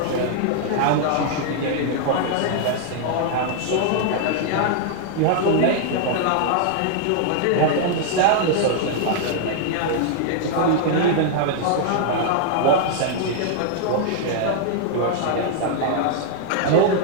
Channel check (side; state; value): both; different; correlation 0.00